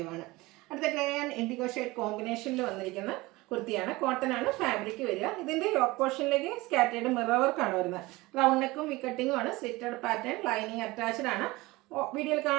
ആണ്. അടുത്ത ഗ്രേ ആൻഡ് ഇൻഡിഗോ ഷെയ്ഡ് കോമ്പിനേഷനിൽ വന്നിരിക്കുന്ന കുർത്തിയാണ്. കോട്ടൺ ആണ് ഫാബ്രിക് വരിക. ഇതിൻ്റെ യോക്ക് പോർഷനിലേക്ക് സ്കാറ്റേർഡ് മിറർ വർക്കാണ് വരുന്നത്. റൗണ്ട് നെക്കും വിക്കട്ടിങ്ങും ആണ്. സ്ലിറ്റഡ് പാറ്റേൺ ലൈനിങ് അറ്റാച്ച്ഡ് ആണ്. വീഡിയോയിൽ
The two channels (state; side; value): quieter; left; 21.2 dB